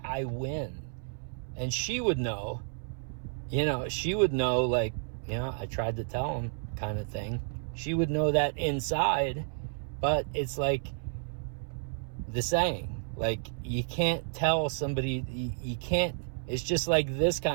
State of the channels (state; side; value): silent; left; 57 dB below the other